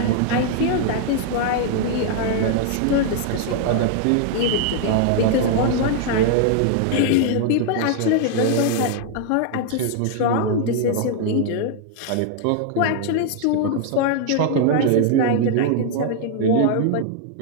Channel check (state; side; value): different; both; correlation 0.00